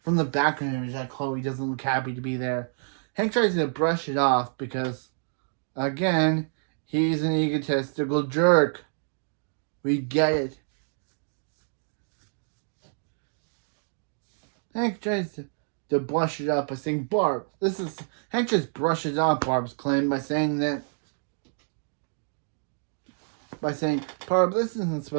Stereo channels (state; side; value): silent; left; digital silence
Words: background image that Chloe doesn't look happy to be there. Hank tries to brush it off because, again, he's an egotistical jerk. We get it. Hank tries to brush it up by saying, "Barb, this is..." Hank just brushes off Barb's claim by saying, "Barb, this isn't